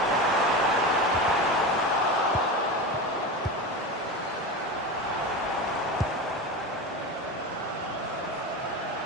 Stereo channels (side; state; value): both; normal; correlation 0.24